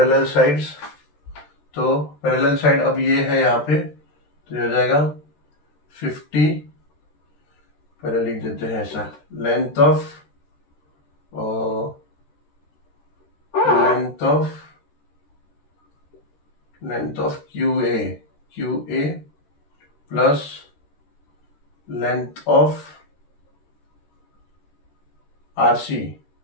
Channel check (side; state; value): right; late; 14 ms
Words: sides. तो पैरेलल साइड अब ये है यहाँ पे, तो ये हो जाएगा 50, पहले लिख देते हैं ऐसा, length of QA plus length of RC